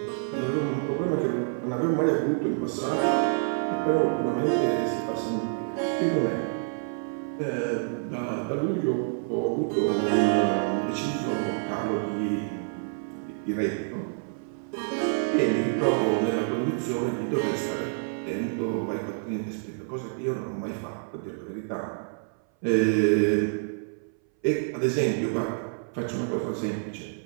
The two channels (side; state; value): left; silent; 60 dB below the other